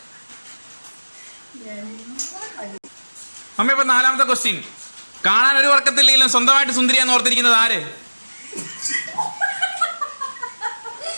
മമ്മി, അപ്പൊ നാലാമത്തെ ക്വസ്റ്റ്യൻ. കാണാൻ ഒരു വർക്കത്തില്ലെങ്കിലും സ്വന്തമായിട്ട് സുന്ദരിയാന്ന് ഓർത്തിരിക്കുന്നത് ആര്?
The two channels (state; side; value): inverted; both; correlation -1.00